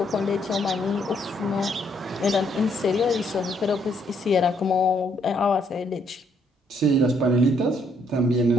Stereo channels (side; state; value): both; normal; correlation 0.70